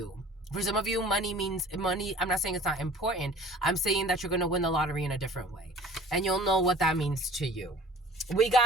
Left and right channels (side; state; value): both; normal; correlation 0.47